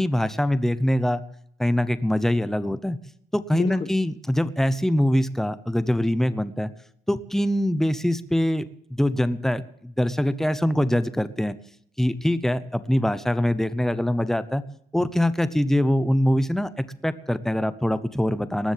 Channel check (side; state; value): both; normal; correlation 0.97